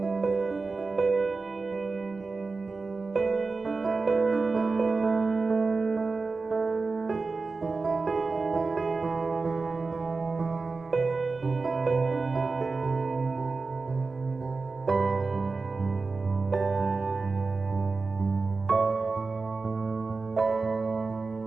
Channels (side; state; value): left; quieter; 4.0 dB